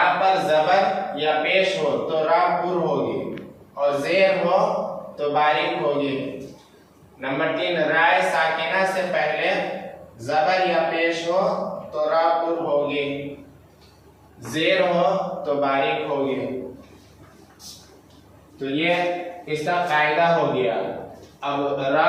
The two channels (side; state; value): both; identical; correlation 1.00